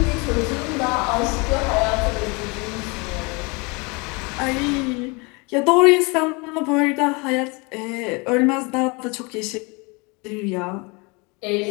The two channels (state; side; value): quieter; right; 28.9 dB